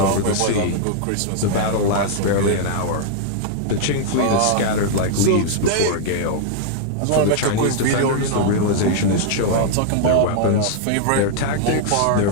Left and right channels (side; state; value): both; different; correlation -0.01